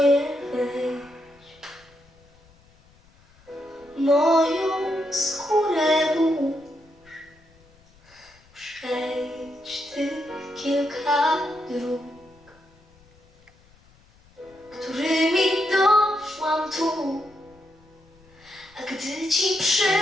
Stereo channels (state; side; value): noise; left; rumble, 29 dB below the sound